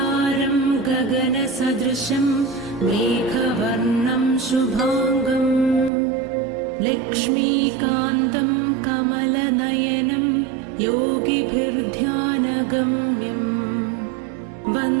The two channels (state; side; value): drops out; left; at 5.9 s